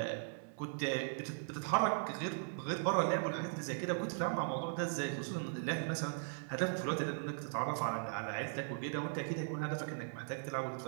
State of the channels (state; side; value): silent; left; 52 dB below the other